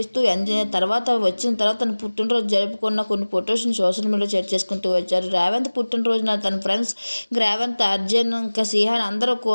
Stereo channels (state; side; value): inverted; both; correlation -1.00